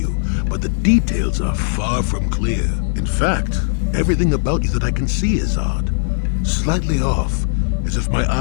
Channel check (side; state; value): right; silent; 66 dB below the other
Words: but the details are far from clear. In fact, everything about you that I can see is odd. Slightly off, as if my